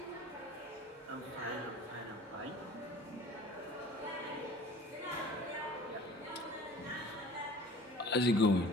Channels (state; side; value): normal; both; correlation 0.45